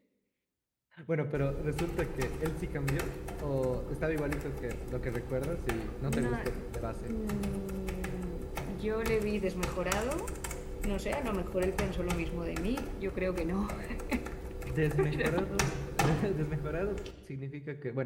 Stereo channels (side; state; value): both; identical; correlation 1.00